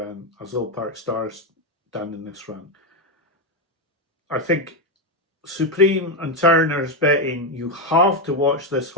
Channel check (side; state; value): both; normal; correlation 0.07